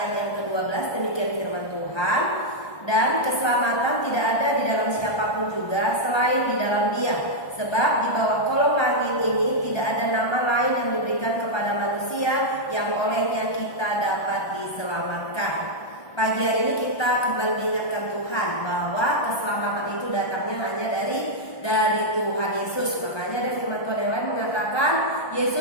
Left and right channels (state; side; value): late; right; 1.3 ms